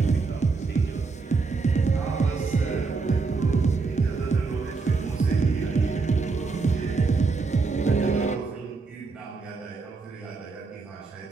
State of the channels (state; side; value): quieter; left; 4.3 dB